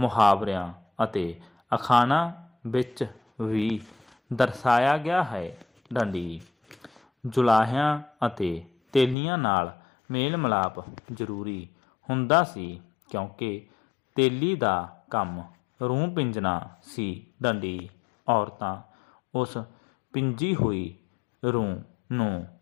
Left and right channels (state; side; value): drops out; right; at 9.2 s